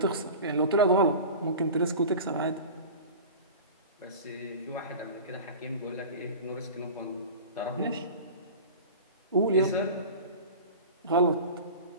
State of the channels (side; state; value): both; inverted; correlation -0.34